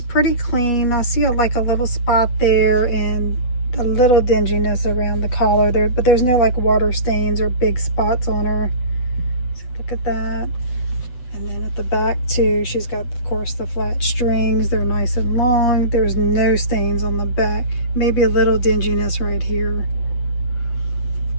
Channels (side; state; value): right; late; 7.9 ms